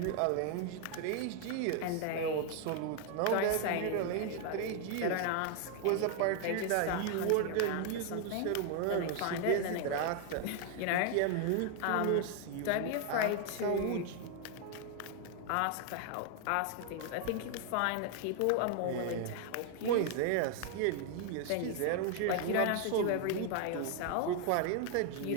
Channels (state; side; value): different; both; correlation 0.00